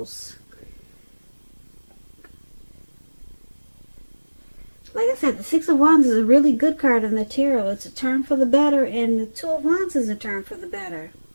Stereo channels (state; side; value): inverted; both; correlation -1.00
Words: Like I said, the Six of Wands is a really good card in the tarot. It's a turn for the better, and the Two of Wands is a turn for the better.